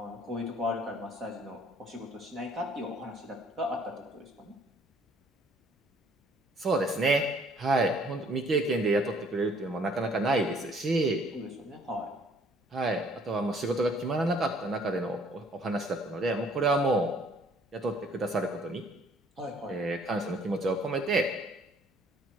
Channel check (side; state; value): both; normal; correlation 0.60